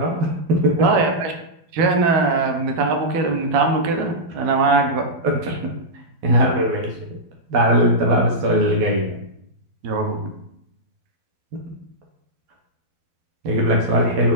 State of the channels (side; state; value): left; late; 12 ms